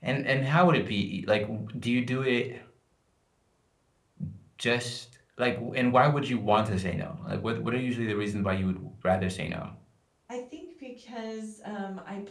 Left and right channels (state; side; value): identical; both; correlation 1.00